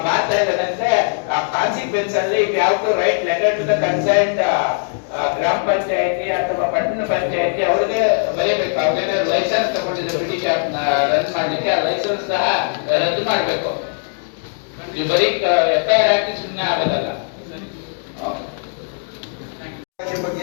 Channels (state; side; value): silent; right; 66 dB below the other